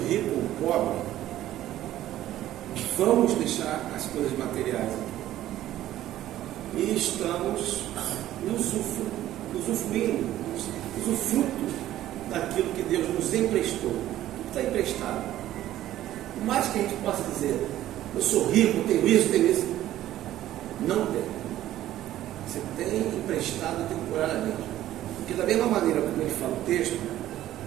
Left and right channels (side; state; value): left; quieter; 13.5 dB